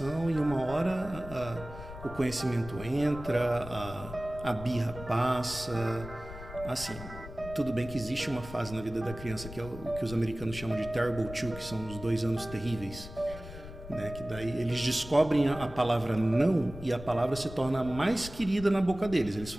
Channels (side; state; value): left; noise; rumble, 13 dB below the sound